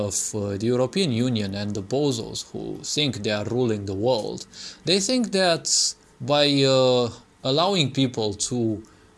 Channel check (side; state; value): both; identical; correlation 1.00